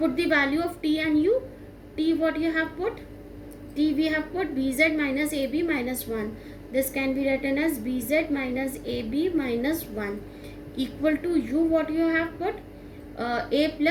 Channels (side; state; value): both; identical; correlation 1.00